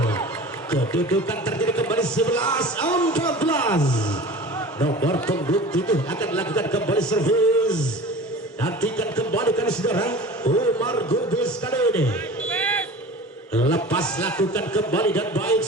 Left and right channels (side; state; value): both; normal; correlation 0.38